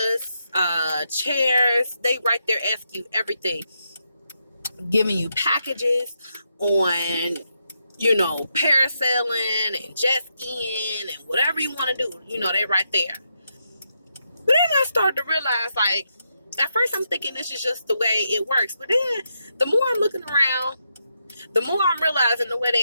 chairs. They right there ask you everything. Giving you packages on, parasailing and jet skiing and whatever you want to do. They right there. But then I started to realize, like, at first I'm thinking this is just the way it works. But then the more I'm looking around, the more I'm realizing the way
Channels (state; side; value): inverted; both; correlation -0.82